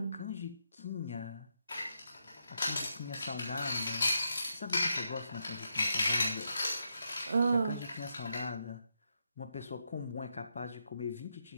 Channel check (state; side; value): inverted; both; correlation -0.82